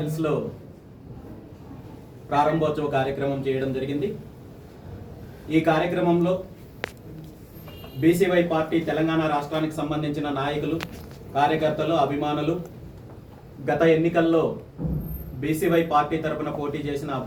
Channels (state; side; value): identical; both; correlation 1.00